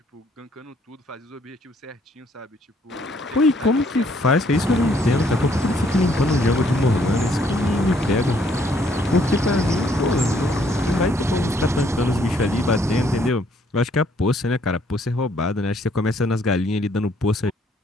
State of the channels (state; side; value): normal; both; correlation 0.66